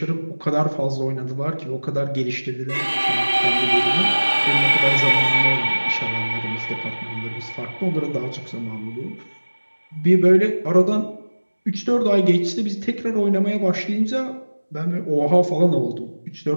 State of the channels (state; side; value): inverted; both; correlation -1.00